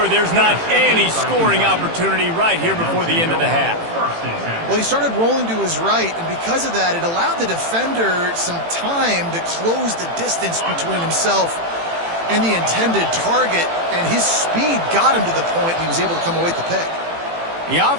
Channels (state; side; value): late; left; 18 ms